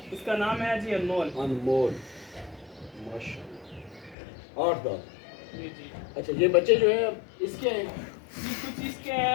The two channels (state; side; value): drops out; right; at 4.2 s